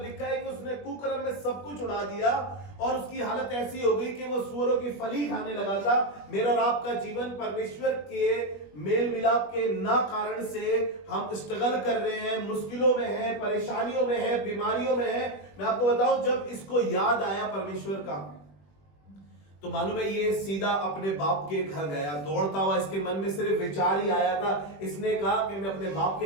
लिखा है कि उसने कुकर्म में सब कुछ उड़ा दिया और उसकी हालत ऐसी हो गई कि वो सूअरों की फली खाने लगा था। मेरा और आपका जीवन परमेश्वर के मेल मिलाप के ना कारण से हम स्ट्रगल कर रहे हैं, मुश्किलों में है, परेशानियों में है, बीमारियों में है। मैं आपको बताऊं, जब इसको याद आया परमेश्वर का, तो मालूम है ये सीधा अपने बाप के घर गया दौड़ता हुआ। इसके मन में सिर्फ विचार ही आया था। इसने कहा कि मैं अपने बाप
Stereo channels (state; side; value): late; right; 21 ms